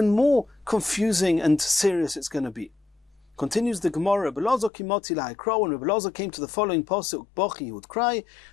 more confusing and serious it's going to be. Continues the Gemara, Rabbi Loza kimoti lahaikro, when Rabbi Loza came to the following pasuk, Bochi, he would cry.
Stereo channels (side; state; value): right; drops out; at 4.7 s